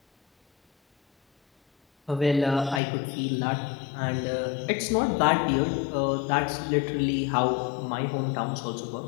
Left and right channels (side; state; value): right; drops out; at 2.8 s